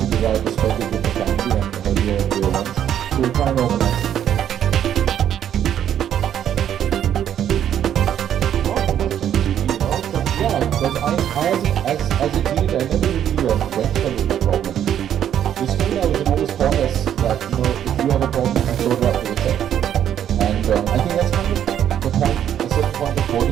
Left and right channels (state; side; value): quieter; left; 10.1 dB